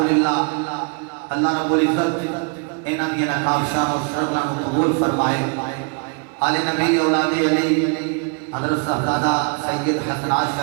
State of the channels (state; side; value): quieter; left; 36.9 dB